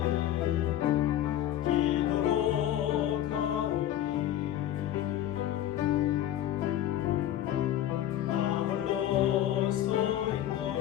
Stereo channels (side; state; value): right; quieter; 12.0 dB